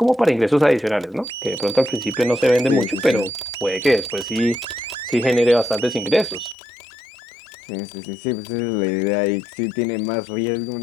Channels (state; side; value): drops out; right; at 6.6 s